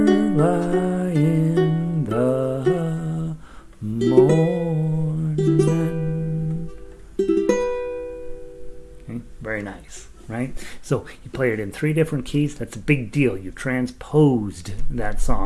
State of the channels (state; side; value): identical; both; correlation 1.00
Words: in the morning. Okay, very nice. Right? So you play it in 3 different keys. That's a big deal. You transposed that